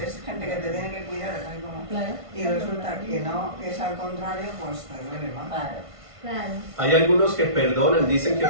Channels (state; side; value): late; left; 1.5 ms